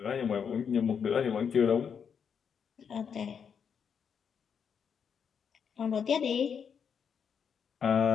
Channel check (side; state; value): right; quieter; 7.0 dB